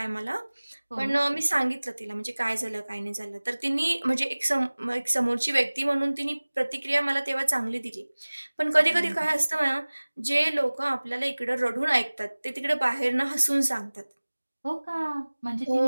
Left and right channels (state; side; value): inverted; both; correlation -1.00